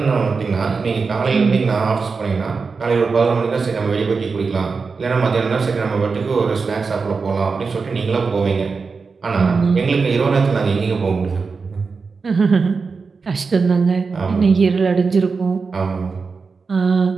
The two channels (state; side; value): quieter; left; 4.8 dB